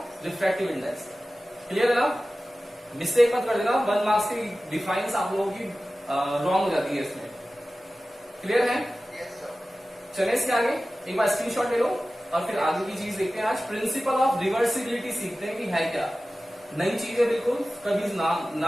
रिफ्रैक्टिव इंडेक्स। क्लियर है ना, मिस्टेक मत कर देना, 1 मार्क्स की डिफाइंस आप लोगों की रॉन्ग हो जाती है इसमें। क्लियर है, चले इसके आगे एक बार स्क्रीनशॉट ले लो और फिर आगे की चीज देखते हैं। आज प्रिंसिपल ऑफ रिवर्सिबिलिटी सीखते हैं कि है क्या, नई चीज है बिल्कुल, कभी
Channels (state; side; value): normal; both; correlation 0.96